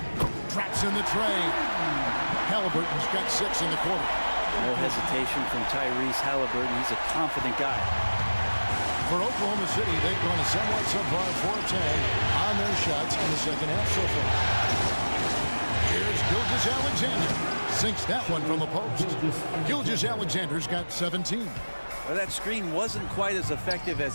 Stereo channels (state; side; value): inverted; both; correlation -1.00